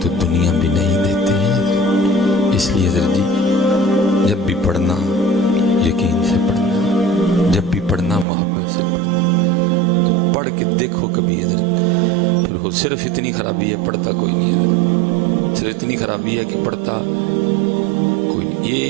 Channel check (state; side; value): drops out; left; at 8.2 s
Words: دنیا بھی نہیں دیتے ہیں. اس لیے حضرت جی جب بھی پڑھنا یقین سے پڑھنا، جب بھی پڑھنا محبت سے پڑھنا. پڑھ کے دیکھو کبھی حضرت پھر ہو. صرف اتنی خرابی ہے پڑھتا کوئی نہیں حضرت. صرف اتنی خرابی ہے کہ پڑھتا کوئی نہیں.